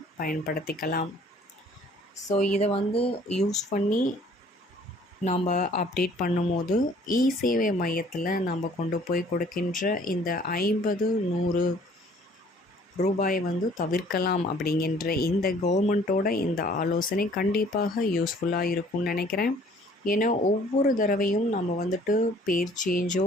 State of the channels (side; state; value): both; normal; correlation 0.56